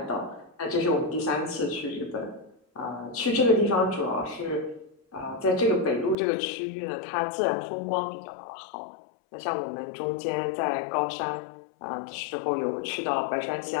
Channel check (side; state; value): right; drops out; at 6.2 s